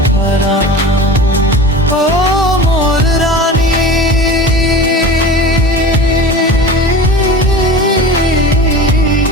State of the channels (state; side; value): normal; both; correlation 0.34